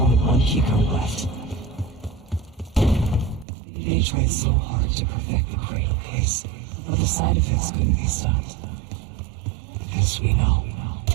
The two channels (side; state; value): left; drops out; at 3.5 s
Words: one keycode left. They tried so hard to perfect the cradle case, but the side effects couldn't be stopped. As we know,